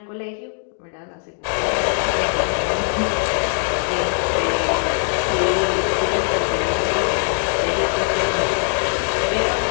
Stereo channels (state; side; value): silent; right; 60 dB below the other